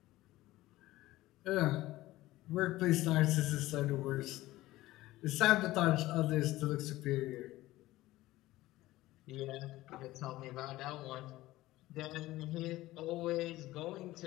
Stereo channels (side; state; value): right; quieter; 17.1 dB